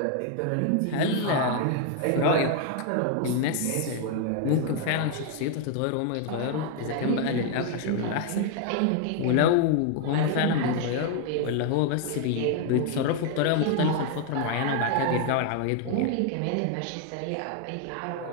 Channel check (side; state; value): both; different; correlation 0.00